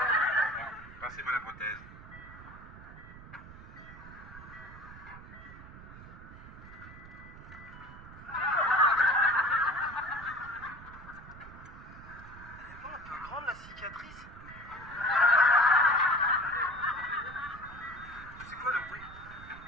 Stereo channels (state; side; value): noise; right; rumble, 16 dB below the sound